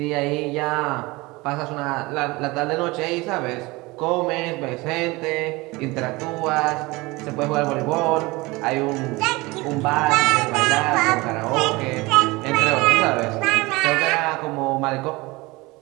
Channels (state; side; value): quieter; left; 22.7 dB